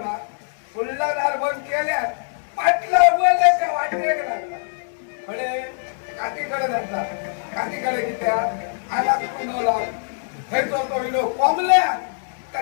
फुल्ला दार बंद केल्या पाटला उघडले का वाटले लागला. म्हणजे काकीकडे जाता. काकीकडे कित्या आला कुंडवला. थैतो तो विलो कोंबल्या का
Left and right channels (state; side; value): silent; right; digital silence